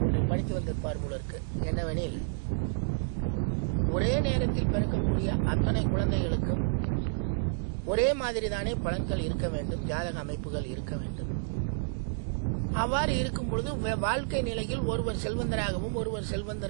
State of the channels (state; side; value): silent; left; digital silence